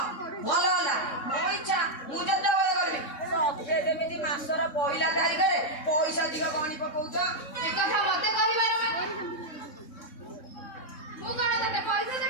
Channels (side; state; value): right; late; 3.6 ms